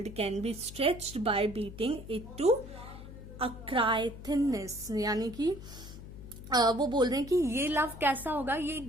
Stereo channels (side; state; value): left; noise; hum, 13 dB below the sound